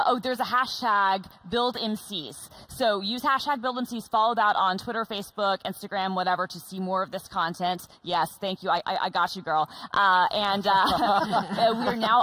There's a hashtag BuildMCs. So use hashtag BuildMCs, follow that on Twitter, Facebook, Instagram, whatever, to see more of this content. Yes, thank you. I got you, girl. We are now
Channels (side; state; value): both; identical; correlation 1.00